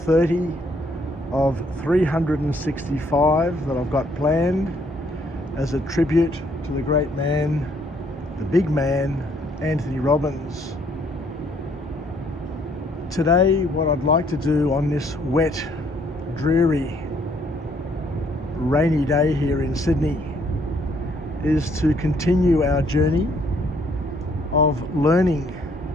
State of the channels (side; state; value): both; normal; correlation 0.66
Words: of 365 that I've got planned as a tribute to the great man, the big man, Anthony Robbins. Today, what I'd like to do on this wet, dreary, rainy day here in Sydney is to continue our journey of learning